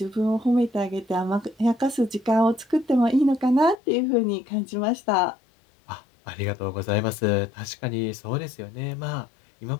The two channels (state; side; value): drops out; right; at 3.8 s